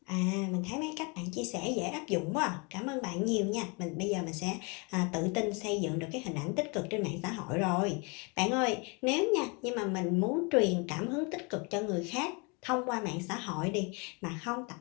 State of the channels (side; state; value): right; quieter; 31.5 dB